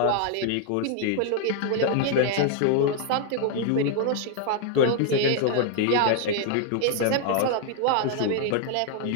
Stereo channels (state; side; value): different; both; correlation 0.00